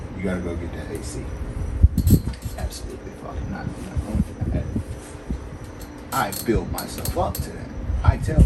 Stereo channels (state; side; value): identical; both; correlation 1.00